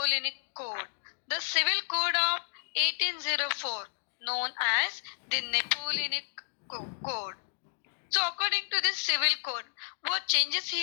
Code? The Civil Code of 1804 known as the Napoleonic Code. So according to this civil code, what changes he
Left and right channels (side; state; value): right; silent; digital silence